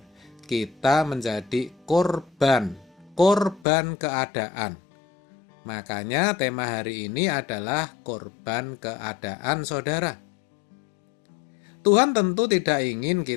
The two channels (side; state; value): right; drops out; at 3.7 s